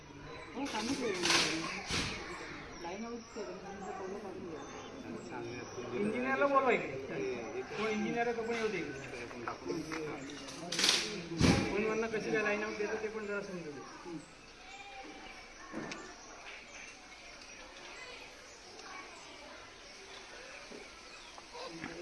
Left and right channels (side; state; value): both; identical; correlation 1.00